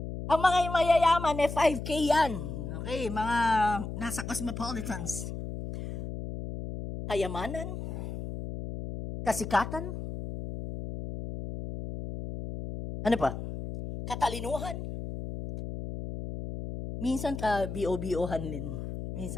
Ang mga mayayaman, 5K yan. Okay, mga nasa cosmopolitans. Kayamanan, kasikatan, ano pa? Katalinuhan. Minsan ka-BO-BOhan din.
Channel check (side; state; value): left; noise; hum, 7 dB below the sound